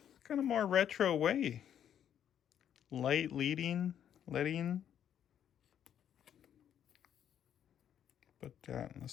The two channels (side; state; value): right; quieter; 9.6 dB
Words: kind of more retro way. Light letting. Put that in the